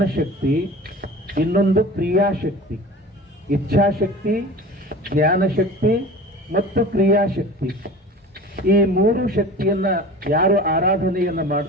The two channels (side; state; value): both; normal; correlation 0.37